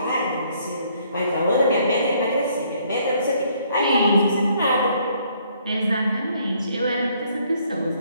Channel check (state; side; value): inverted; both; correlation -0.66